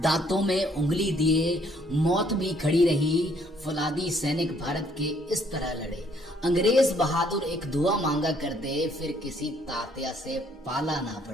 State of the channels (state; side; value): normal; both; correlation 0.65